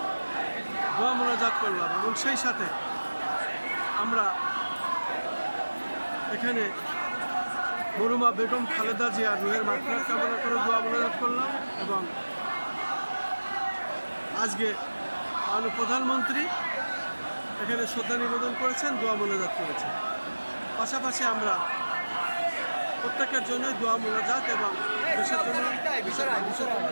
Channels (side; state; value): both; inverted; correlation -1.00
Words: দোয়া মোনাজাত করলাম এবং সেই সাথে আমরা এখানে মরহুমা বেগম খালেদা জিয়ার রুহের মাগফিরাত কামনা করে দোয়া মোনাজাত করলাম এবং আজকে মাননীয় প্রধানমন্ত্রী এখানে শ্রদ্ধা নিবেদন করেছেন, দোয়া মোনাজাত করেছেন। পাশাপাশি আমরা প্রত্যেকের জন্যই দোয়া মোনাজাত এবং দেশের জন্য